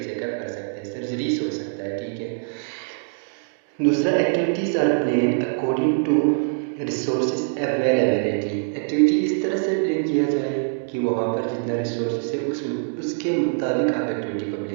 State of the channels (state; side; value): silent; left; digital silence